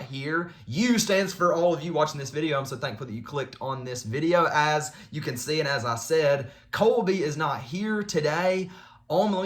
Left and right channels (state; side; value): identical; both; correlation 1.00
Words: here. U stands for all of you watching this video. I'm so thankful that you clicked on this video. As you can see, and as I said, Colby is not here today. Let